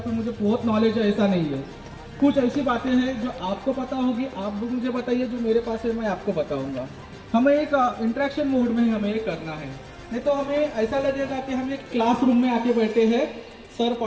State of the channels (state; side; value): identical; both; correlation 1.00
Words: फिर मुझे बहुत नॉलेज है, ऐसा नहीं है। कुछ ऐसी बातें हैं जो आपको पता होगी, आप भी मुझे बताइए, जो मेरे पास है मैं आपको बताऊंगा। हमें एक इंटरेक्शन मोड में हमें ये करना है, नहीं तो हमें ऐसा लगेगा कि हम एक क्लासरूम में आके बैठे हैं, सर